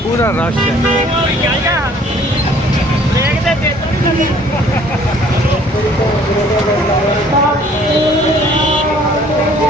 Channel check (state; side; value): normal; both; correlation 0.57